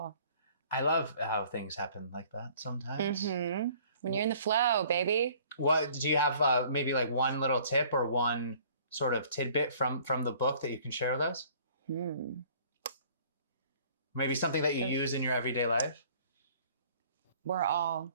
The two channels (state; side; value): inverted; both; correlation -0.54